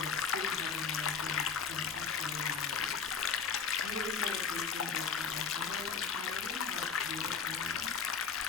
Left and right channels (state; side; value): quieter; right; 6.2 dB